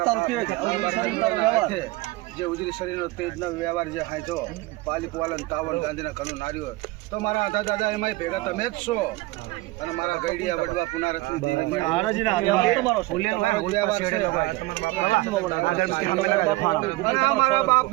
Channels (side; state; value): left; quieter; 20.7 dB